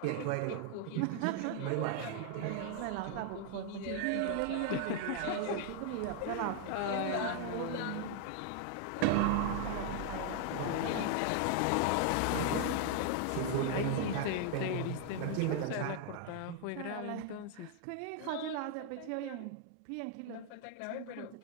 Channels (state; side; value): different; both; correlation 0.00